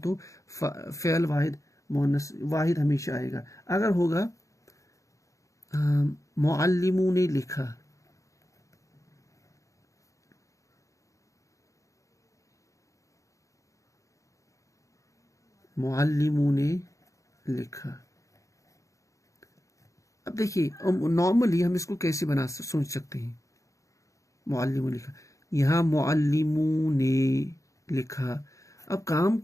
فعل واحد مؤنث واحد ہمیشہ آئے گا. اگر ہوگا معلموں نے لکھا، معلموں نے لکھا. اب دیکھیے نارملی ہم اس کو کیسے سوچ سکتے ہیں؟ معلموں نے لکھا، یہاں معلموں نے لکھا. اب کام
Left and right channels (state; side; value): late; right; 0.15 ms